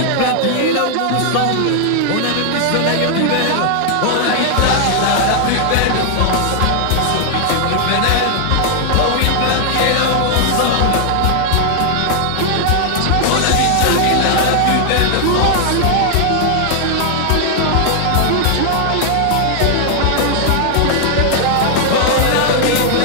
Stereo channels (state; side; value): different; both; correlation 0.00